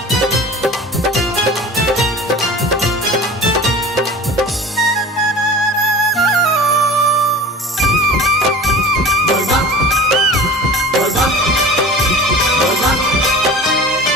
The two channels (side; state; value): both; normal; correlation 0.38